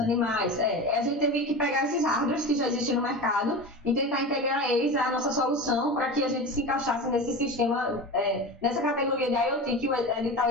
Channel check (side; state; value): both; normal; correlation 0.28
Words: A gente teve que pegar esses hardwares que já existem no mercado e tentar integrar eles à nossa solução para que a gente se encaixasse nesse sistema, nessa categoria de IoT que o edital